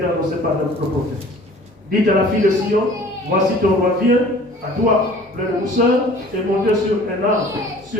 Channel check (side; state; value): both; normal; correlation 0.49